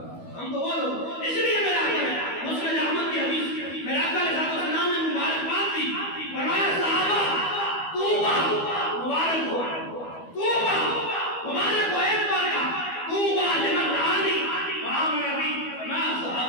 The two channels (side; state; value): right; late; 12 ms